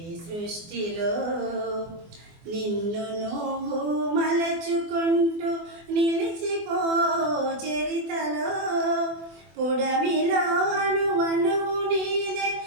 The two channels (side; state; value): left; late; 24 ms